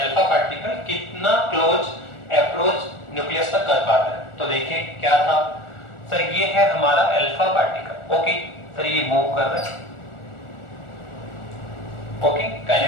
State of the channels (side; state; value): right; late; 1.4 ms